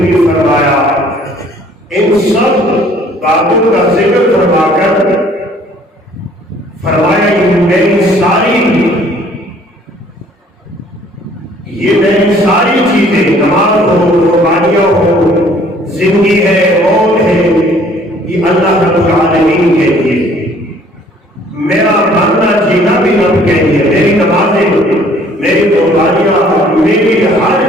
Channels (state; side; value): normal; both; correlation 0.57